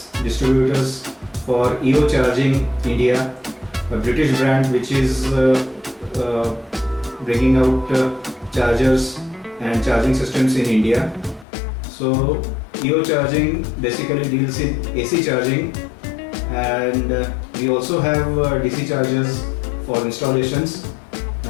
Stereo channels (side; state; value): right; drops out; at 11.5 s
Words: distributors for EO Charging India, a British brand which is bringing out chargers and charging systems in India. So EO Charging basically deals in AC charging, and we also have DC chargers for installations,